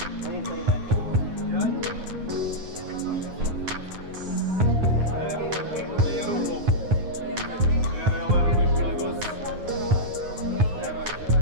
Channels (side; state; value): left; late; 9.5 ms